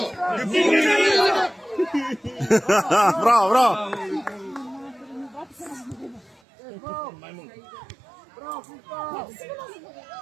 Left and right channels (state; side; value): drops out; left; at 6.4 s